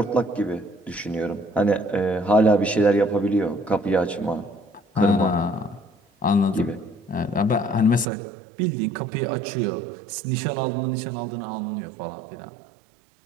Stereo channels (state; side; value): drops out; left; at 8.1 s